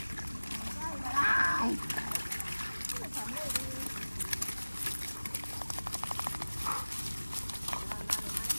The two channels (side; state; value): both; inverted; correlation -1.00